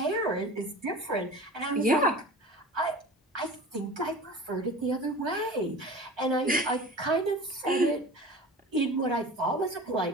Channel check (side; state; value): both; normal; correlation 0.37